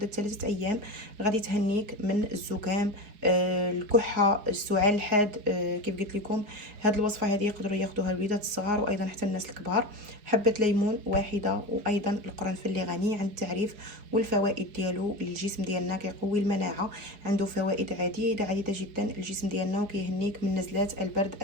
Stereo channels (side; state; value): left; late; 4.8 ms